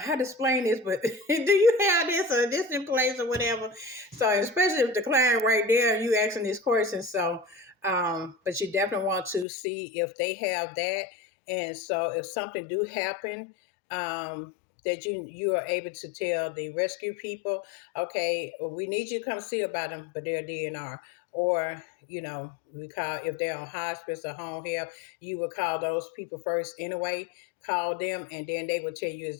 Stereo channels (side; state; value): right; drops out; at 9.5 s